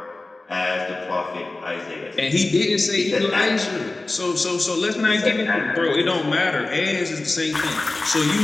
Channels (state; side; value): quieter; right; 3.1 dB